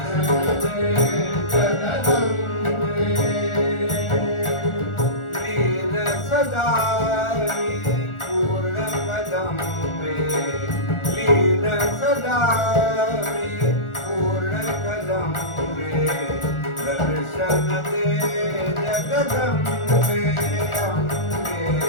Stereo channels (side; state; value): right; late; 1.4 ms